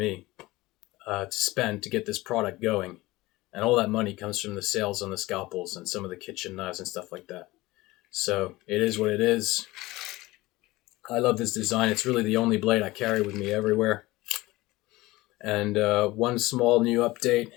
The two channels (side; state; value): right; quieter; 19.7 dB